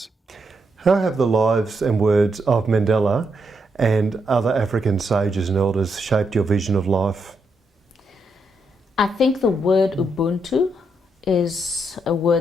How have the lives and words of Mandela and other African sages and elders shaped your vision of life? I think the word Ubuntu is a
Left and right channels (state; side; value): normal; both; correlation 0.80